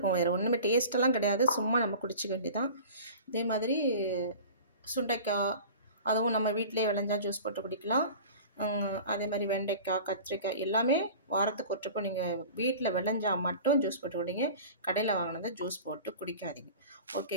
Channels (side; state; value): both; inverted; correlation -0.39